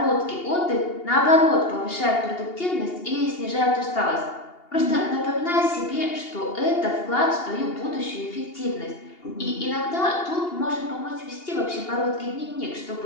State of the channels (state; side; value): late; right; 2.8 ms